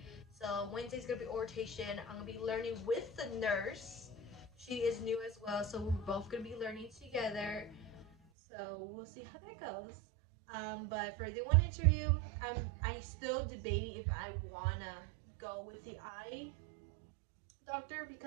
So Wednesday's gonna be orientation. I'm gonna be learning with the nurse. She is new as well, so we're both gonna be learning together. So we'll see how that goes. But for the one interview, I still debating if I wanna go with the eye doctor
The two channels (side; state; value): left; drops out; at 8.2 s